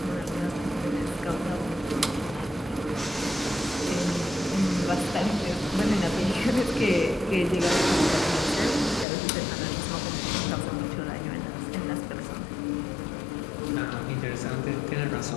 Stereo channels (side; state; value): right; drops out; at 9.1 s